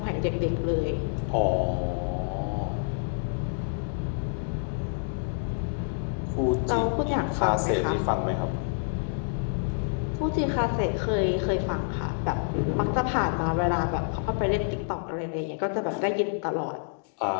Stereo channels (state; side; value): silent; right; digital silence